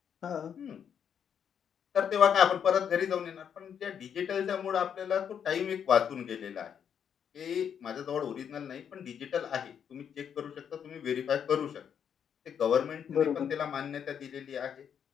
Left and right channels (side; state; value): right; quieter; 8.1 dB